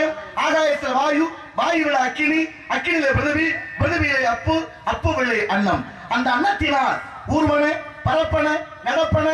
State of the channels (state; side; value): identical; both; correlation 1.00